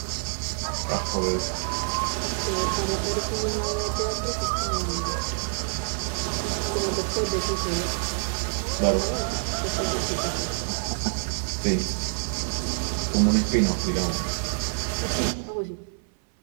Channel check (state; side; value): silent; left; 60 dB below the other